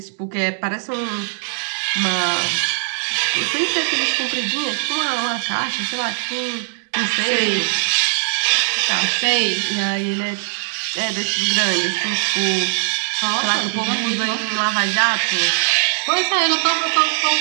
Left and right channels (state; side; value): silent; left; digital silence